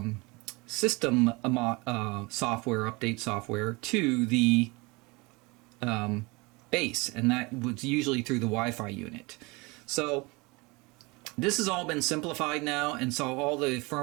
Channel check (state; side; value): quieter; left; 25.7 dB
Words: system software, update software, to the base, and that was usually through the Wi-Fi unit. So this has all been simplified now, and so all the